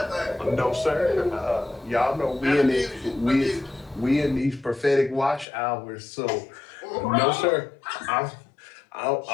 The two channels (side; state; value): right; drops out; at 5.5 s